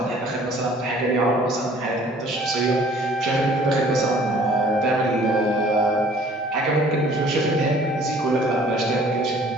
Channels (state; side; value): normal; both; correlation 0.54